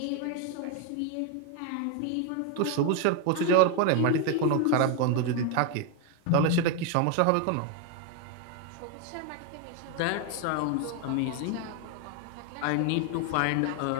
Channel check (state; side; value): different; both; correlation 0.01